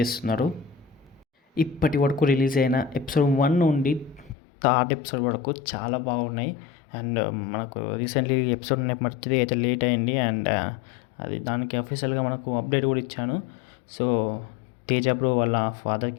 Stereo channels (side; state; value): right; drops out; at 4.4 s